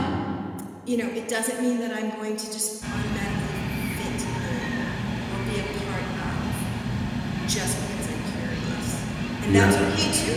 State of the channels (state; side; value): identical; both; correlation 1.00